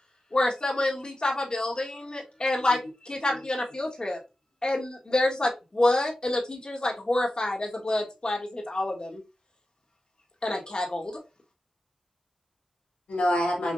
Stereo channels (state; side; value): normal; both; correlation 0.92